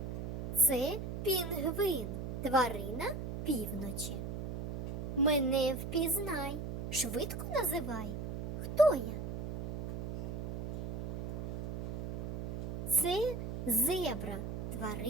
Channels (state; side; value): noise; right; hum, 5 dB below the sound